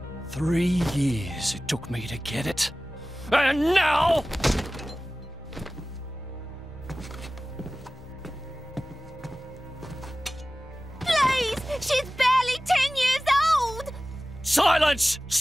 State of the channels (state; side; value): normal; both; correlation 0.97